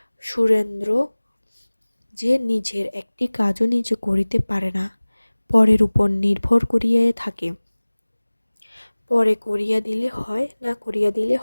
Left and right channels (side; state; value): both; inverted; correlation -1.00